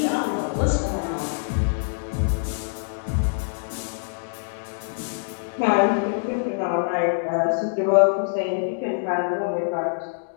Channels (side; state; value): right; silent; digital silence